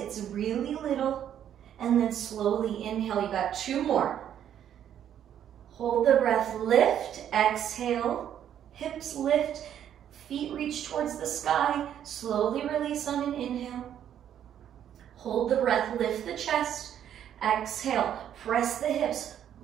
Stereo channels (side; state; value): left; quieter; 10.0 dB